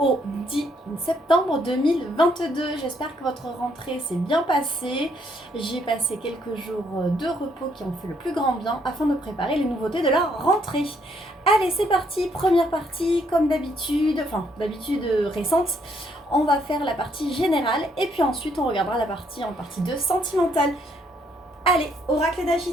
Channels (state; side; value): normal; both; correlation 0.70